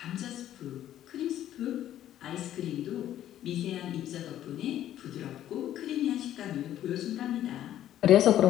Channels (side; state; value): right; quieter; 12.0 dB